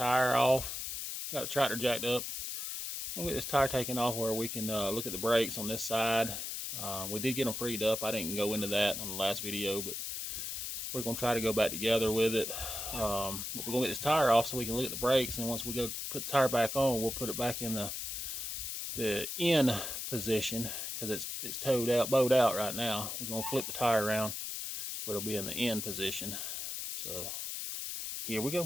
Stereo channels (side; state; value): left; noise; hiss, 4 dB below the sound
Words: off. Got the tractor jacked up. I'm gonna get this tire taken off where we can look at the brakes on this side. We did get them freed up. I didn't go into that on the last video, but we're gonna try to go back together with it. But we're gonna get this tire off so we can look at the brakes, and once we go put the tire back on, we'll put it back in the in position because it's bowed out right now. We're gonna flip the tire around where it'll be in the in position. So here we